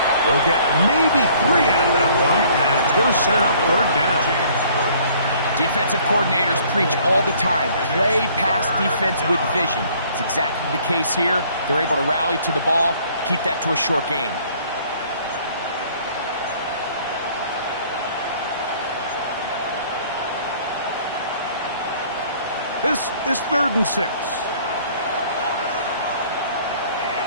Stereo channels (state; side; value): inverted; both; correlation -0.57